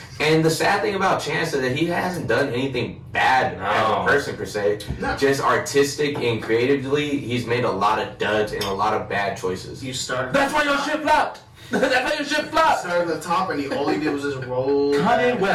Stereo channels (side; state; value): both; identical; correlation 1.00